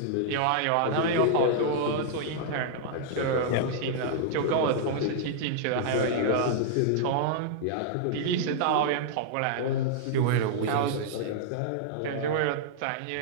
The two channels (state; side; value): different; both; correlation -0.01